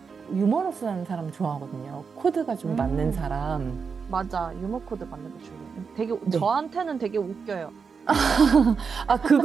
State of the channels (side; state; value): left; quieter; 5.6 dB